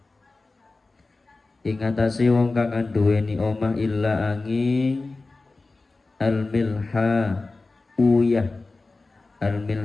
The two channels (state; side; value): quieter; right; 3.5 dB